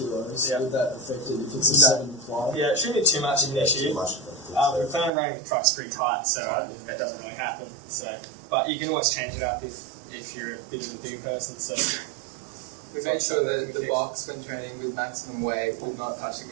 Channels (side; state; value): left; drops out; at 5.1 s